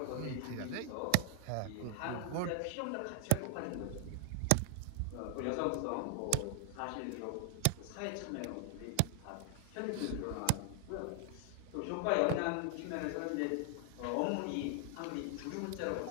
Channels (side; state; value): both; different; correlation 0.00